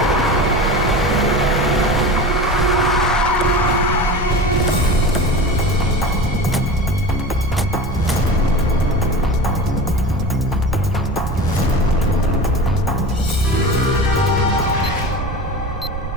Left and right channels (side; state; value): right; noise; rumble, 7 dB below the sound